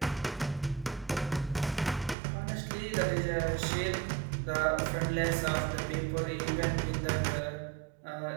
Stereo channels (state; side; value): drops out; left; at 2.1 s